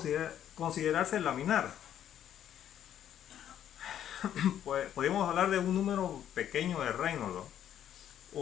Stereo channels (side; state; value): right; quieter; 10.4 dB